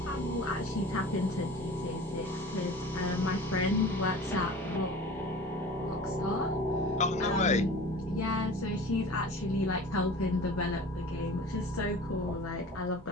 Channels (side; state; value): both; normal; correlation 0.40